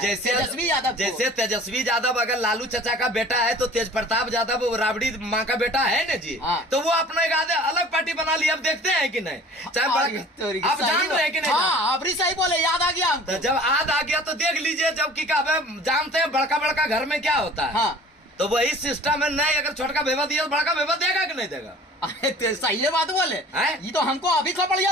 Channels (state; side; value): normal; both; correlation 0.46